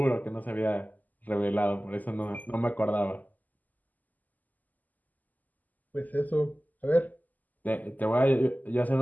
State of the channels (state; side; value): late; right; 0.082 ms